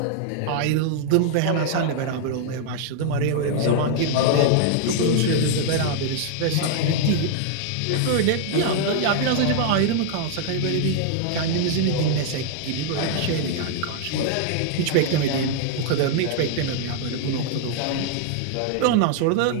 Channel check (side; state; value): both; different; correlation 0.00